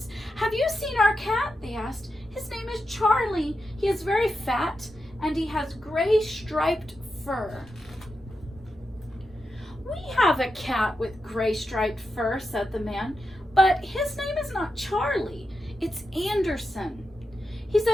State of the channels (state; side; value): normal; both; correlation 0.88